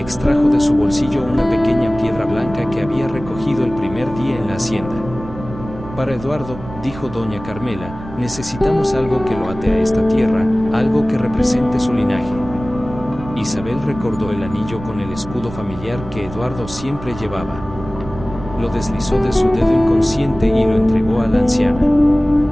de su bolsillo una pequeña piedra blanca que había recogido el primer día en la hacienda. Para Eduardo, dijo doña Carmela, necesitamos algo que lo ate a esta tierra, algo que represente su linaje. Isabel recordó el anillo con el escudo familiar que Eduardo siempre llevaba. Lo deslizó de su dedo inconsciente y lo entregó a la anciana.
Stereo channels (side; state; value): right; noise; rumble, 13 dB below the sound